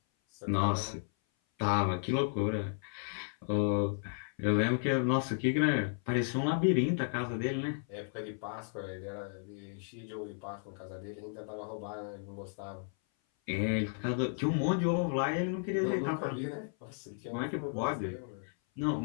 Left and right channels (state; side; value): silent; right; 55 dB below the other